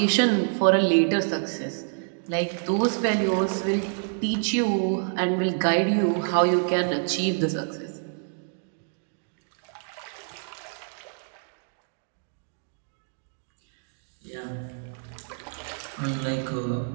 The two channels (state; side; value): silent; left; 60 dB below the other